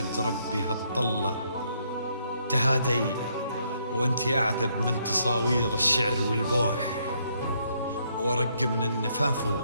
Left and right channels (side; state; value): both; inverted; correlation -0.72